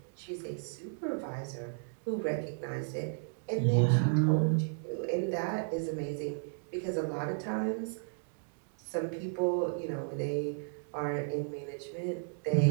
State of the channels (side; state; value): left; silent; digital silence